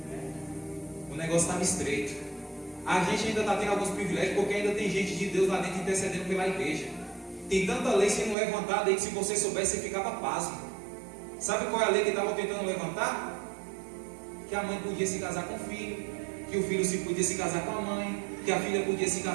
o negócio estava estreito. A gente ainda está tendo alguns privilégios, porque ainda tem gente de Deus lá dentro intercedendo pela igreja. Tem tanta lei sendo levantada aí que se você soubesse, você ficava pasmo. Sabe qual é a lei que estavam tentando levantar? Que a mãe podia se casar com o filho, que o filho podia se casar com a mãe, que a filha podia se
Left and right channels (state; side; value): drops out; left; at 8.3 s